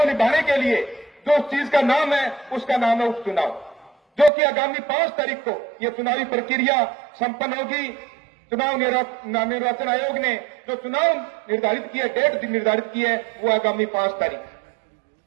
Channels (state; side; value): drops out; left; at 4.3 s